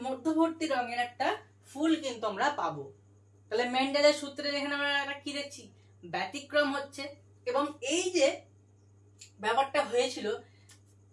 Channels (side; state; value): both; identical; correlation 1.00